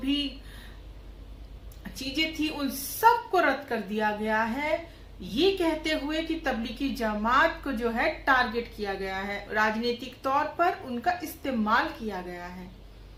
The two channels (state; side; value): identical; both; correlation 1.00